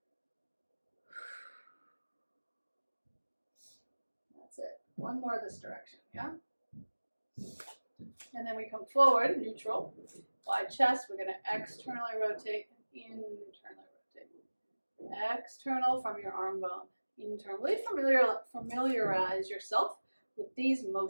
One more this direction, yeah? And then we come forward, neutral, wide chest. We're going to externally rotate and internally rotate. External from your arm bone. Internally familiarize yourself with these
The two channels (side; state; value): both; inverted; correlation -1.00